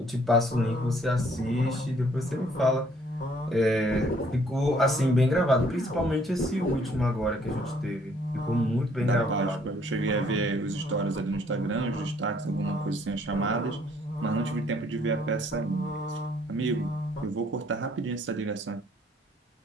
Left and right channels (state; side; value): normal; both; correlation 0.63